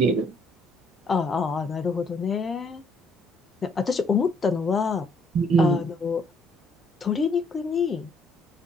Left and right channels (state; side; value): normal; both; correlation 0.67